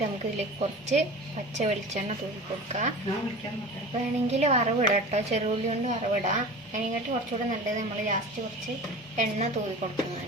നമുക്ക് ഇതിലേക്ക് കുറച്ച് പച്ച വെളിച്ചെണ്ണ തൂക്കി കൊടുക്കാം. വേണമെങ്കിൽ വറവിടാം കേട്ടോ, ചെറുള്ളി കൊണ്ട് വറവിടാം. അതിനെക്കാട്ട് കുറച്ചുകൂടെ നല്ലത് നമ്മൾ ലാസ്റ്റ് കുറച്ച് എണ്ണ തൂക്കി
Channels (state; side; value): normal; both; correlation 0.35